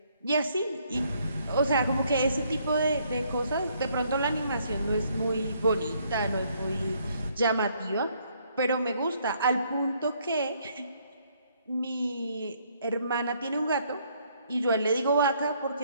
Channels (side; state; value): both; inverted; correlation -0.68